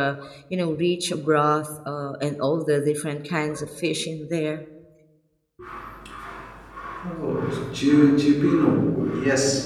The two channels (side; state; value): both; identical; correlation 1.00